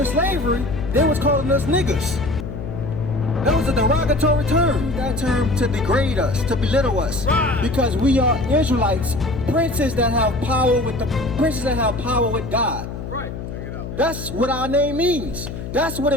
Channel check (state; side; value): noise; left; hum, 8 dB below the sound